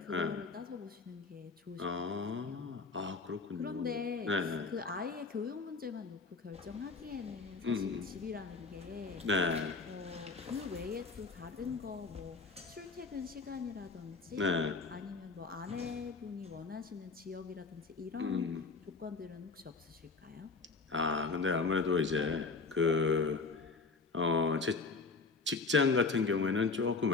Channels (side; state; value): right; quieter; 4.2 dB